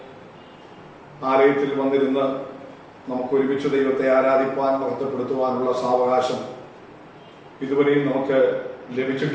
ആലയത്തിൽ വന്നിരുന്ന് നമുക്ക് ഒരുമിച്ച് ദൈവത്തെ ആരാധിപ്പാൻ മഹത്വപ്പെടുത്തുവാനുള്ള സാവകാശം ഇതുവരെയും നമുക്ക്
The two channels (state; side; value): identical; both; correlation 1.00